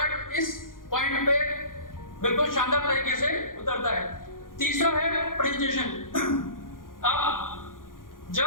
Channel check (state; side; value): late; right; 0.90 ms